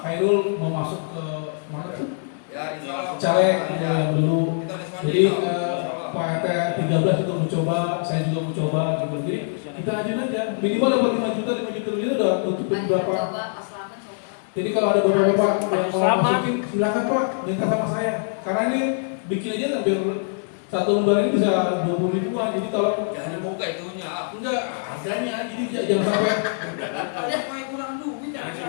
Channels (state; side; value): silent; right; digital silence